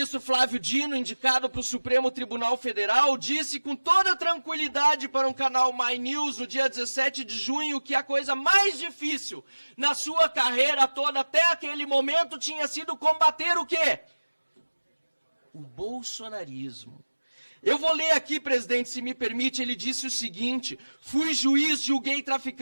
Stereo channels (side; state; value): both; inverted; correlation -1.00